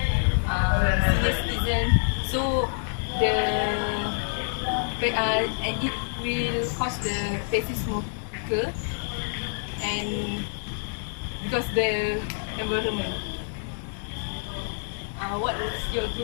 senior citizens. So it will cause the passive smoker and because the environment. What is your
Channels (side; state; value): right; silent; digital silence